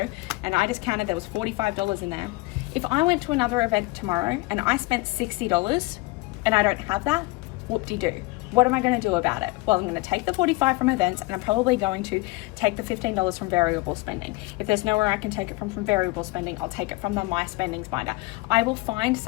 and I just counted there was $45 in there, if I went to another event tomorrow and I spent $60 and I don't have that, whoop-de-doo. What am I going to do about it? Well, I'm going to take the 45 from events, and I'm probably going to take the $15 from variable spending. If there's nowhere I can take it from variable spending, I'll take it from the My Spendings binder. I will find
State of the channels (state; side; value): quieter; right; 22.1 dB